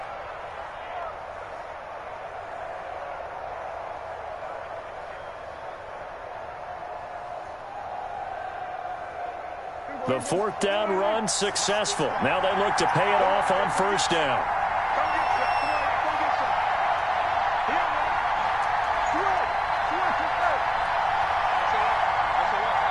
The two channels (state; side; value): identical; both; correlation 1.00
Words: The 4th down run successful. Now they look to pay it off on 1st down.